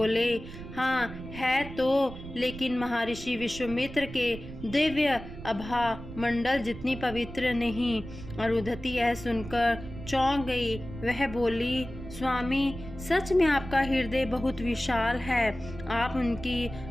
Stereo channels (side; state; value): right; noise; rumble, 12 dB below the sound